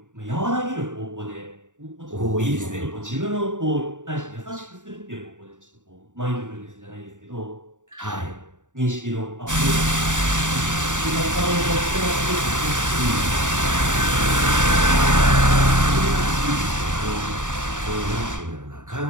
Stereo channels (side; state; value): left; late; 0.86 ms